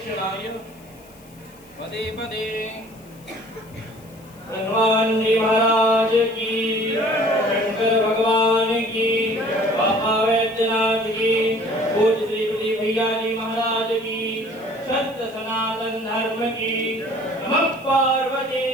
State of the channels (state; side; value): noise; left; hiss, 26 dB below the sound